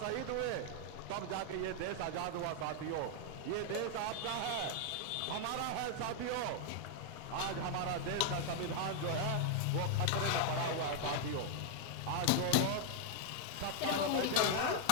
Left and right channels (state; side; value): different; both; correlation 0.00